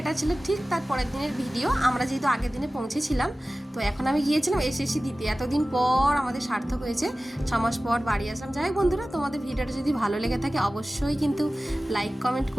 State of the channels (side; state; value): both; normal; correlation 0.96